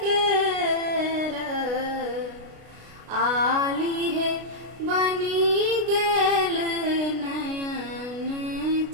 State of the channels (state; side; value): late; left; 33 ms